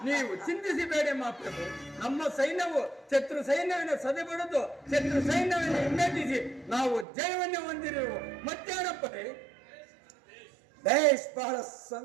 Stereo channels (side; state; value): left; drops out; at 7.1 s